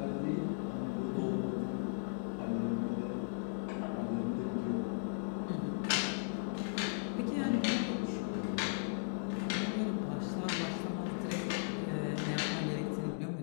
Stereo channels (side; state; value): right; silent; digital silence